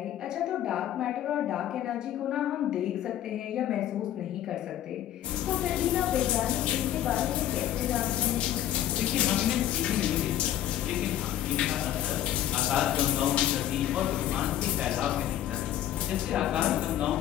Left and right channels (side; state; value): right; quieter; 11.9 dB